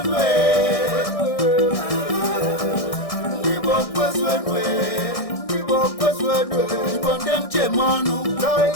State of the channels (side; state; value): right; late; 1.6 ms